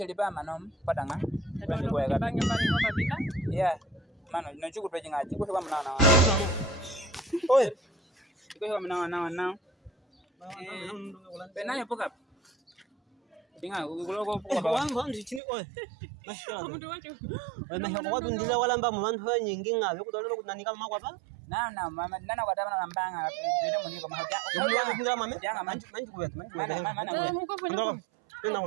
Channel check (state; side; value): drops out; left; at 15.4 s